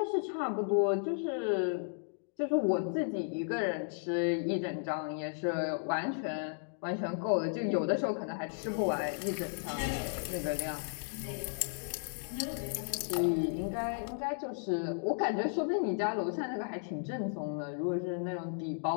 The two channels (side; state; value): right; silent; digital silence